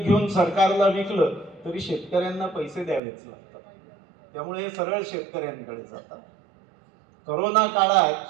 सरकारला विकलं तरी शेतकऱ्यांना पैसे द्यावेच लागतात. त्यामुळे हे सरळ शेतकऱ्यांकडे जातात. करोना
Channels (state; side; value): drops out; left; at 3.0 s